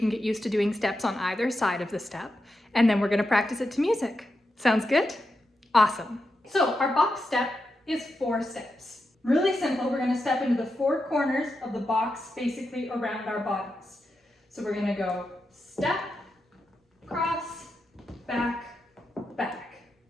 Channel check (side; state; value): both; normal; correlation 0.87